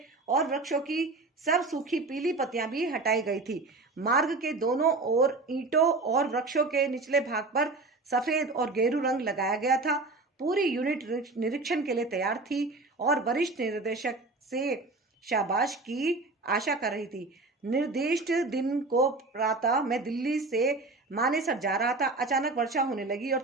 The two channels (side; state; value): left; quieter; 3.4 dB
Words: और वृक्षों की सब सूखी पीली पत्तियां भी हटाई गई थी। मार्ग के दोनों ओर ईंटों और वृक्षों के निचले भाग पर सफेद और गेरू रंग लगाया गया था। पूरी यूनिट निरीक्षण के लिए तैयार थी और वरिष्ठ निर्देशक से शाबाश की आशा कर रही थी। निर्दिष्ट दिन को प्रातः मैं दिल्ली से मानेसर जा रहा था। अचानक वर्षा होने लगी और